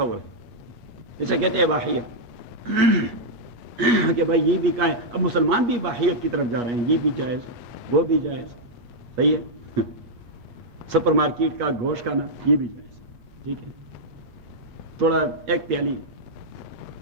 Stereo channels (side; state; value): left; late; 8.4 ms